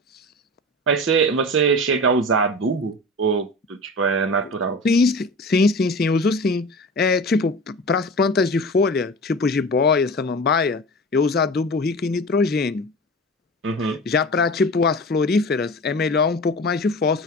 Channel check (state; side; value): normal; both; correlation 0.33